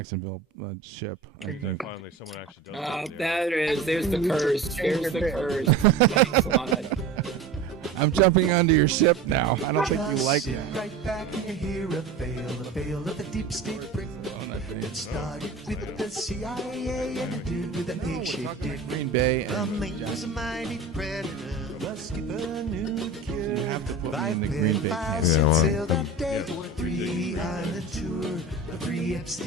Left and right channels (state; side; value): quieter; left; 4.0 dB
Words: ship. I think. Finally, someone actually does. There's the curse. There's the curse. Thanks a lot. I'm jumping onto your ship now. I don't think you like it. Right back and you hear a veil of the deep state brick. It started with the CIA and ended with an egg-shaped dick. Green Bay The and mate was a mighty predator. The skipper knew the cure. You have to put me in the Green Bay camp. Sailed that day for a 3-island tour. A 3